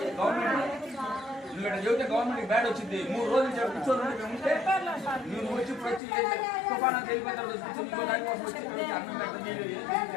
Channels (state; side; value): drops out; right; at 6.0 s